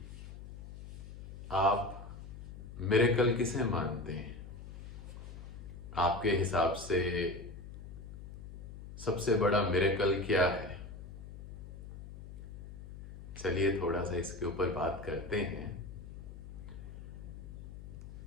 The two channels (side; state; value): left; noise; hum, 12 dB below the sound